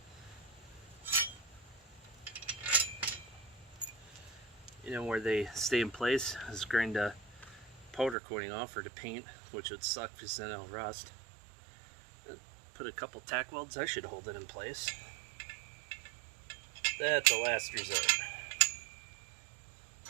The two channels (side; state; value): left; drops out; at 8.2 s